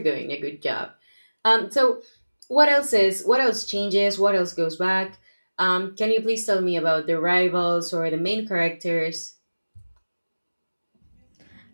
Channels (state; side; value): inverted; both; correlation -1.00